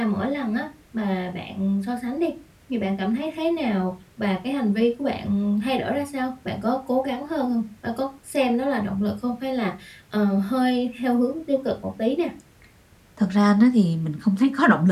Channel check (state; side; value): identical; both; correlation 1.00